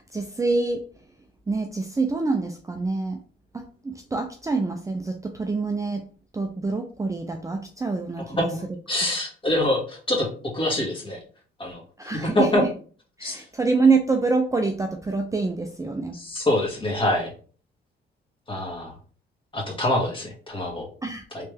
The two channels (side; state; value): both; normal; correlation 0.66